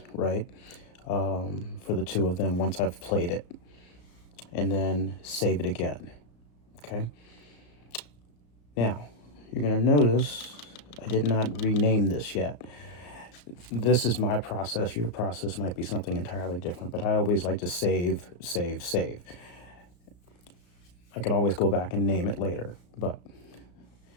right, for the 2 of them once I've played it, and then save it again. Okay. Now, you're going to notice I did not rename this yet. This is my process. Your process might be something entirely different, but I always like to save, save, save. I can always go back and name it later, but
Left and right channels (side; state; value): right; late; 34 ms